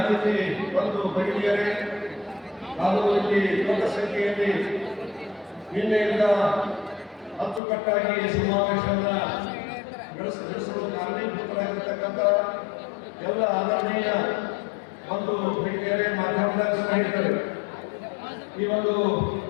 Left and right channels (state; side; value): drops out; right; at 7.6 s